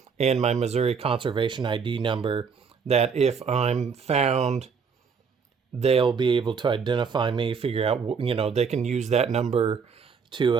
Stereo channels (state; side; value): quieter; left; 5.9 dB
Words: and my Missouri Conservation ID number, that if I'm found, they'll be able to identify me, figure out, they can use that number